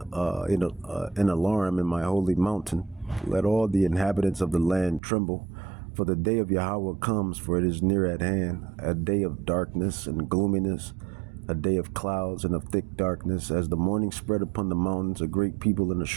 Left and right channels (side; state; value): left; drops out; at 5.0 s